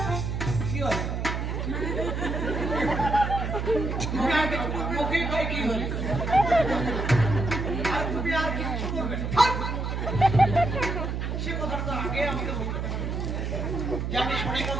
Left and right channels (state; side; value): noise; right; hum, 2 dB below the sound